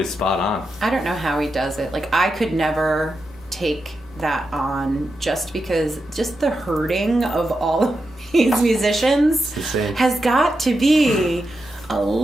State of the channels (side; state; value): both; normal; correlation 0.88